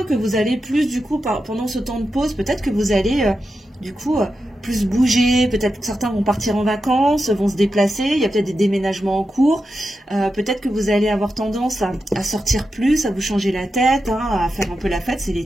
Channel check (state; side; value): normal; both; correlation 0.89